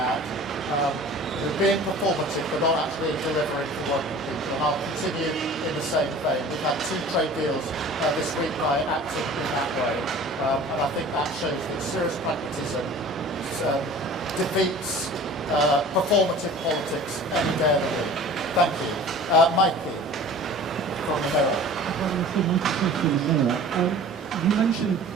being performative but not actually delivering for what people. And I'll continue in the same vein. We've had 2 trade deals this week by acting in that way. And I think that shows that serious pragmatism defeats performative politics any day of the week. Thank you. Mikey from the Mirror. You mentioned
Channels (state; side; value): normal; both; correlation 0.43